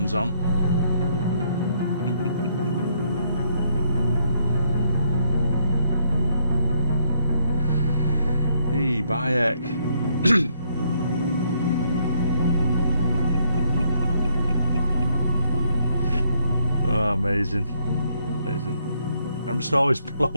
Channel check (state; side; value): inverted; both; correlation -0.71